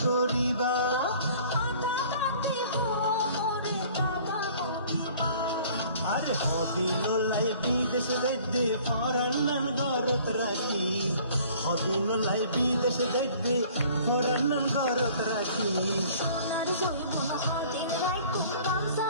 আরে হদিন লাই বিদেশ গদ্দে ফরান্নান গরত রাখি হদিন লাই বিদেশ গদ্দে ফরান্নান গরত রাখি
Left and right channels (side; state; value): both; inverted; correlation -0.52